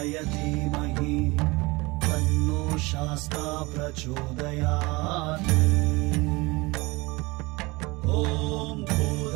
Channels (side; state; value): left; quieter; 23.8 dB